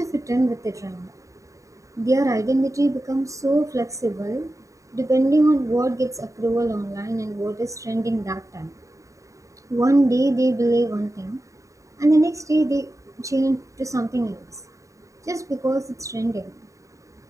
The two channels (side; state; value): left; late; 0.16 ms